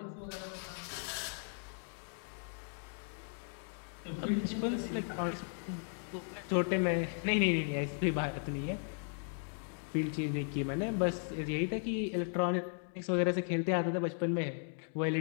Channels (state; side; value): silent; right; 53 dB below the other